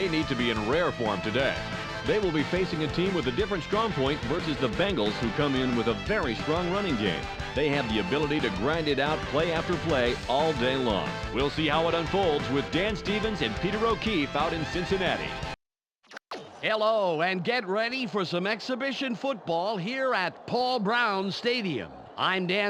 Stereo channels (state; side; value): identical; both; correlation 1.00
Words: need to be in rare form today. They will be facing a team with a different strong point versus the Bengals, who come in with a very strong running game. They have the ability to grind it out play after play all day long. We'll see how it unfolds with Dan Stevens and Peter O'Keefe out in Cincinnati. Hello, and get ready for some exhibition football here at Paul Brown Stadium. I'm